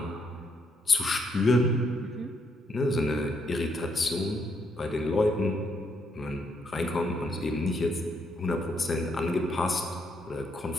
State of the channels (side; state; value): both; normal; correlation 0.75